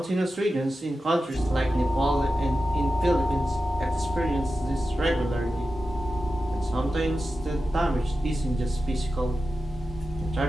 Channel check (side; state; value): both; normal; correlation 0.92